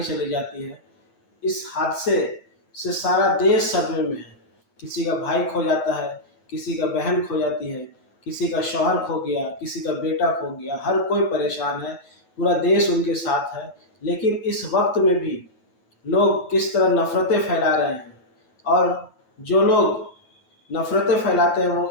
चली जाती है। इस हादसे से सारा देश सदमे में है। किसी का भाई खो जाता है, किसी का बहन खो जाती है, किसी का शौहर खो गया, किसी का बेटा खो गया, हर कोई परेशान है, पूरा देश उनके साथ है। लेकिन इस वक्त में भी लोग किस तरह नफ़रतें फैला रहे हैं, और जो लोग नफ़रतें फैलाते हैं वो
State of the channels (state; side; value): late; right; 9.5 ms